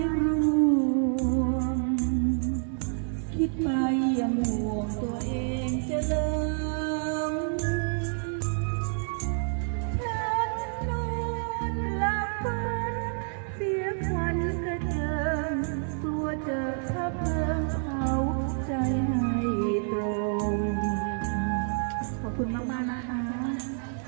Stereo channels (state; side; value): silent; left; 59 dB below the other